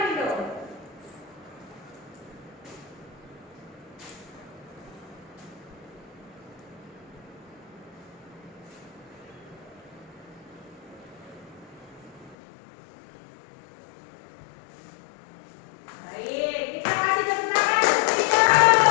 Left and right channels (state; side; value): drops out; right; at 12.4 s